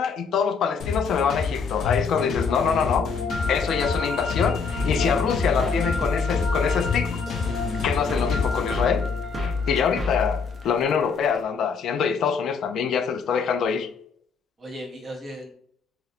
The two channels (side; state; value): right; quieter; 5.4 dB